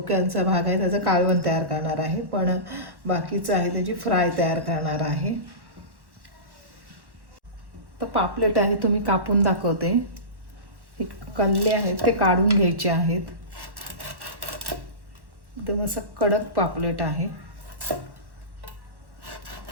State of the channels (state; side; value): late; left; 1.1 ms